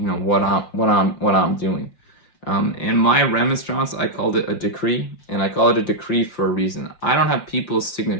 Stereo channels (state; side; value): late; right; 5.7 ms